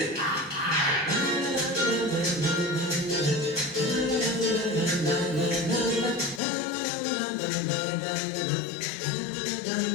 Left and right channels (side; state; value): right; drops out; at 6.4 s